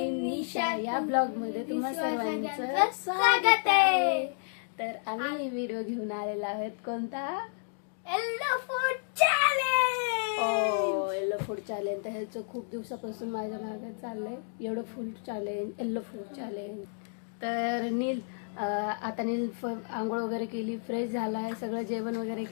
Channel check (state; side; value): silent; right; digital silence